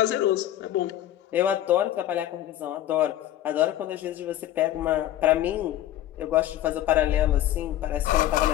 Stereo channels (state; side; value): quieter; right; 12.9 dB